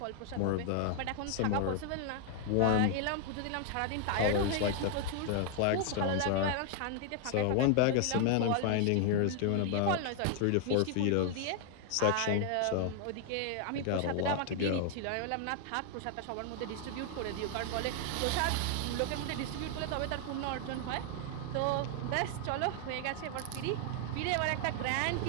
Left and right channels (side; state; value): both; different; correlation 0.00